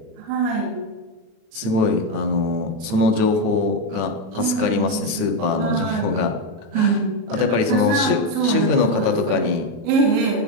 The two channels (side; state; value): left; late; 36 ms